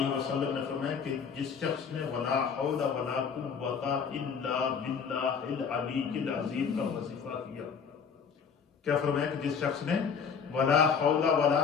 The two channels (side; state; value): right; quieter; 6.4 dB